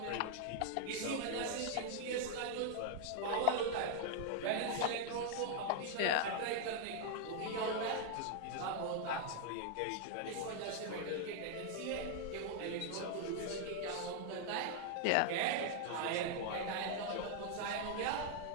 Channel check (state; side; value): different; both; correlation 0.00